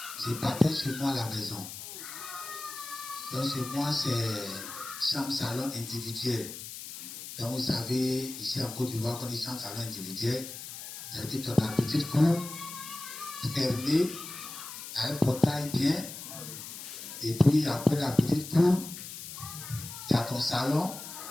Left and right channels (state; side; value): noise; left; hiss, 10 dB below the sound